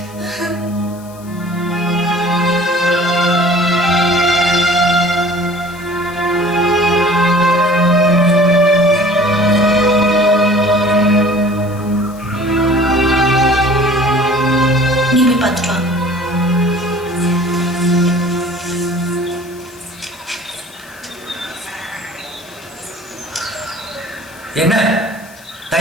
நீ போய் பார்த்துட்டு வா. என்ன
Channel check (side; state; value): left; noise; hiss, 23 dB below the sound